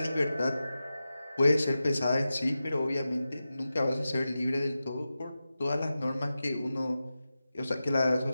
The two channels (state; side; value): inverted; both; correlation -0.93